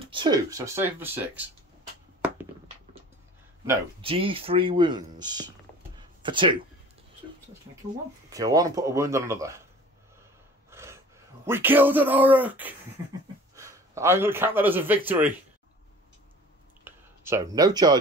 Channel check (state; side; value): normal; both; correlation 0.45